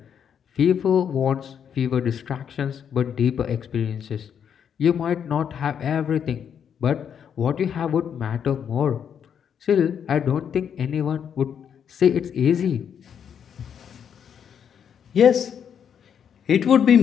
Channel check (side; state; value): right; quieter; 8.1 dB